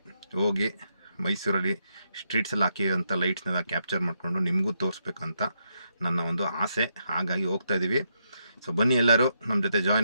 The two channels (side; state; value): both; inverted; correlation -0.80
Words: ಹೋಗಿ ಮೈಸೂರಲ್ಲಿ ಸ್ಟ್ರೀಟ್ಸಲ್ಲಿ ಹಾಕಿರೋಂಥ ಲೈಟ್ಸ್ನೆಲ್ಲ ಕ್ಯಾಪ್ಚರ್ ಮಾಡಿಕೊಂಡು ನಿಮಗೂ ತೋರಿಸ್ಬೇಕಂತ ನನ್ನ ಒಂದು ಆಸೆ. ಹಾಗಾಗಿ ಹೋಗ್ತಾಯಿದ್ದೀವಿ. ಸೊ ಬನ್ನಿ, ಎಲ್ಲರೂ ನಮ್ಮ ಜೊತೆ